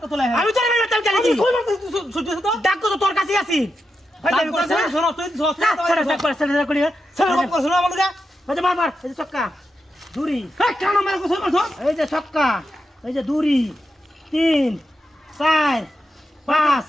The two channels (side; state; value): both; normal; correlation 0.87